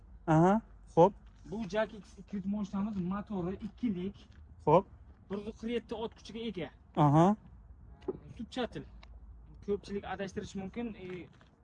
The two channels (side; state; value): both; identical; correlation 1.00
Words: Aha, xo'p. Bu Jak X200 mashinamiz motori 2lik. Xo'p. 147 ot kuchiga ega. Aha. Zubchatil. Ko'pchilik adashtirish mumkin.